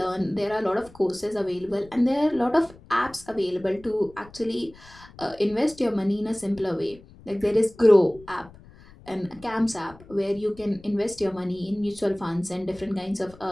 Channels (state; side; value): noise; left; rumble, 22 dB below the sound